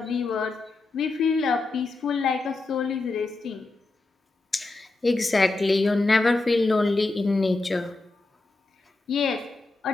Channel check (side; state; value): right; quieter; 3.3 dB